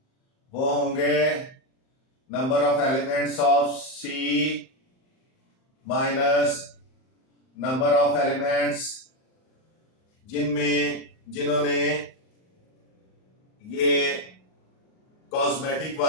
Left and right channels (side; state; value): right; late; 38 ms